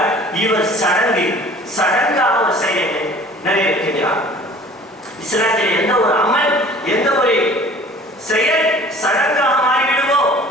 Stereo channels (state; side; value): normal; both; correlation 0.48